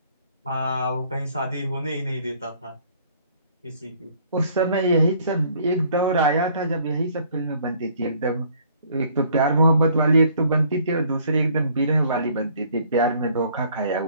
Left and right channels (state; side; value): inverted; both; correlation -0.60